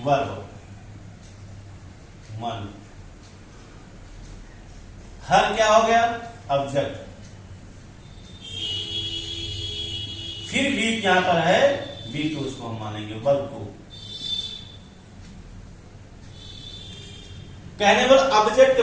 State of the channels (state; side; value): identical; both; correlation 1.00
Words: वर्ब मन, हर क्या हो गया ऑब्जेक्ट, फिर वीक यहां पर है वीक, तो उसको हम मानेंगे वर्ब को। कहने वाला ऑब्जेक्ट के